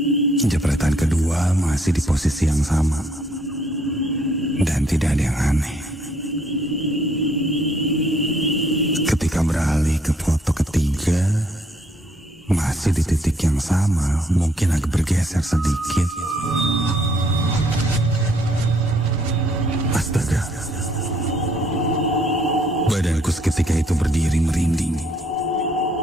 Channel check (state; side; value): normal; both; correlation 0.67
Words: Jepretan kedua masih di posisi yang sama dan tidak ada yang aneh. Ketika beralih ke foto ketiga, masih di titik yang sama, mungkin agak bergeser sedikit. Astaga, badanku seketika itu berdiri merinding.